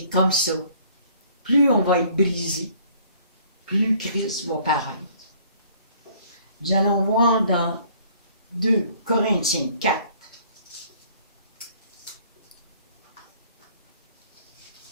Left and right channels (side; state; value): both; inverted; correlation -0.58